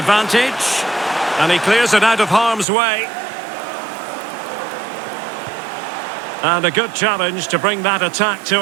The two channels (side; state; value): left; drops out; at 2.7 s